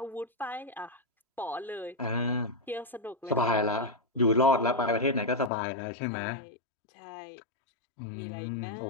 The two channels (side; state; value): right; drops out; at 5.5 s